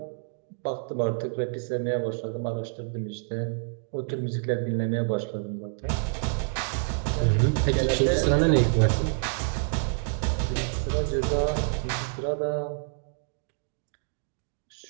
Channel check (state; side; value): silent; left; digital silence